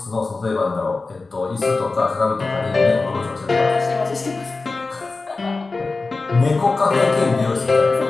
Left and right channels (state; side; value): quieter; right; 3.7 dB